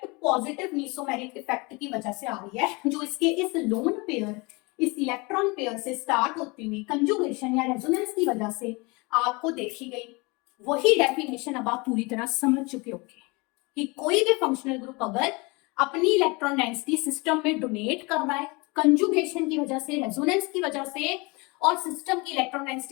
positive mesomeric effect की वजह से आ रही है, जो इसके इस लोन पेयर, इस इलेक्ट्रॉन पेयर से स्टार्ट होती हुई कंजुगेशन या रेजोनेंस की वजह से आपको देखी गई। वही डेफिनेशन अब आप पूरी तरह समझ चुके होंगे कि कोई भी फंक्शनल ग्रुप अगर अपनी इलेक्ट्रॉन डेंसिटी सिस्टम में डोनेट कर रहा है कंजुगेशन की वजह से, रेजोनेंस की वजह से, और सिस्टम की इलेक्ट्रॉन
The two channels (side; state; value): right; quieter; 26.7 dB